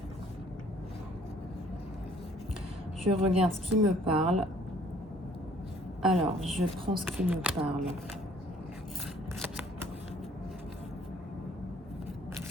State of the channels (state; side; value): normal; both; correlation 0.59